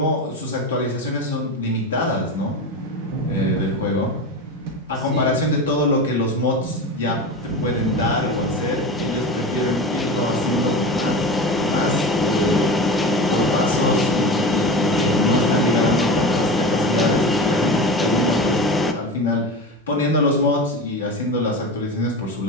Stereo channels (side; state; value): both; normal; correlation 0.27